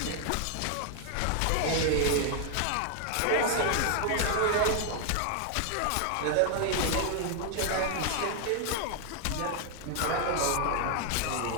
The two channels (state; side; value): different; both; correlation 0.00